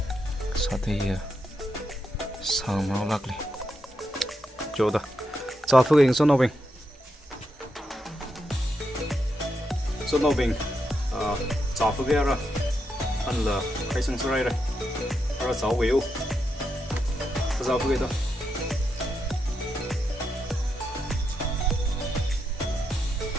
sang nó lắc đi chỗ đó cho phước hình số nào bình cho phước ra anh là khai sang số này rồi rồi sáu biểu cho phước đó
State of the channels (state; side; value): normal; both; correlation 0.83